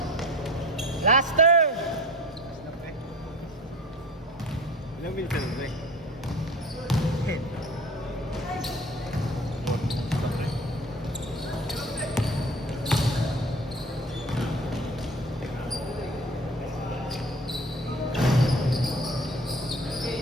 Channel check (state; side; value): normal; both; correlation 0.41